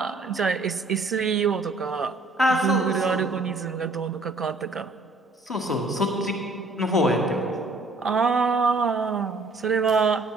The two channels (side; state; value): left; quieter; 3.1 dB